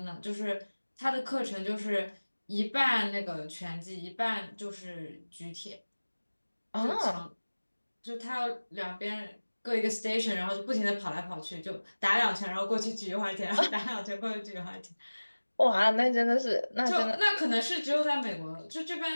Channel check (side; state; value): both; inverted; correlation -1.00